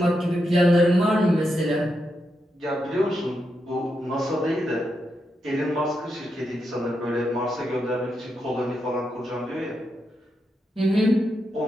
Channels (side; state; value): both; normal; correlation 0.84